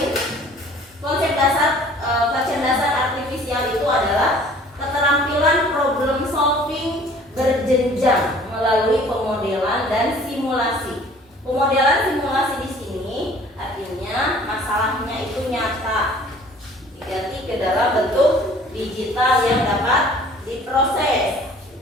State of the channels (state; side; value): normal; both; correlation 0.51